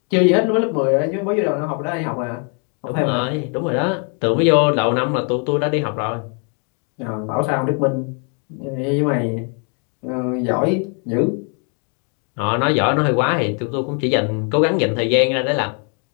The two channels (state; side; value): quieter; right; 39.7 dB